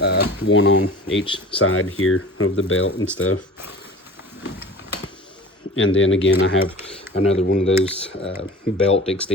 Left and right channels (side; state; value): both; normal; correlation 0.40